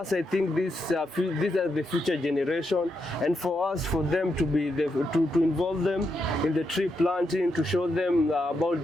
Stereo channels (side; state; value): both; normal; correlation 0.83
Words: I think these are the future generation, and for them to be to involve them in the tree planting, to show them